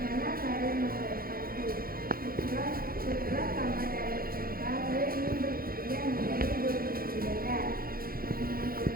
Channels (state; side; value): late; left; 0.43 ms